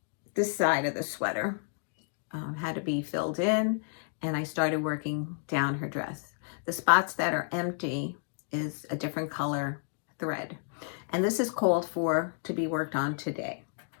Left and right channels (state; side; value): silent; right; digital silence